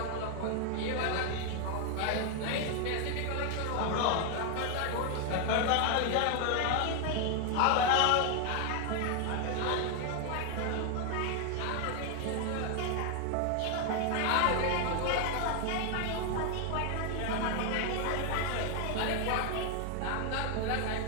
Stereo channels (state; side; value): different; both; correlation 0.00